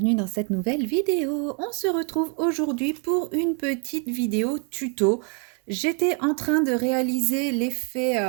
dans cette nouvelle vidéo. On se retrouve aujourd'hui pour une petite vidéo tuto. J'étais en train de réaliser l'effet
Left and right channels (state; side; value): quieter; left; 39.4 dB